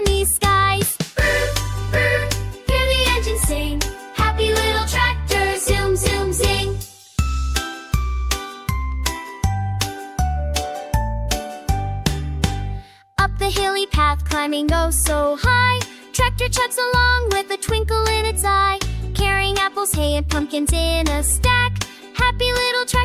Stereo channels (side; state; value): both; identical; correlation 1.00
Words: skies. Brrrm, brrrm, hear the engine sing. Happy little tractor, zoom, zoom, zing. Up the hilly path, climbing oh so high, tractor chugs along with a twinkle in its eye. Carrying apples, hay, and pumpkins in a stack. Happy little